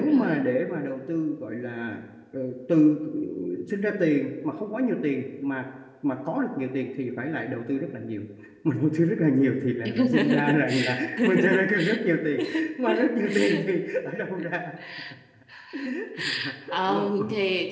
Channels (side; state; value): both; identical; correlation 1.00